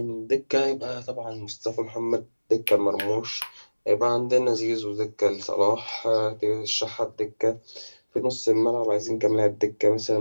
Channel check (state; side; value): inverted; both; correlation -1.00